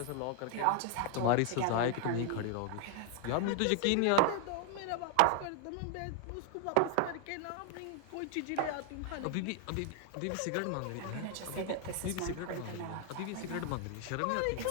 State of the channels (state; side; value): different; both; correlation 0.00